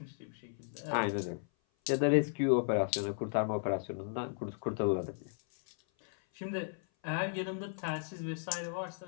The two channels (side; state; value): right; silent; 54 dB below the other